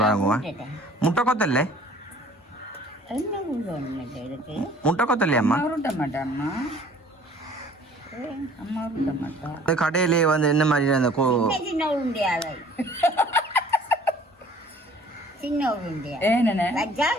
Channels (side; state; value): both; normal; correlation 0.52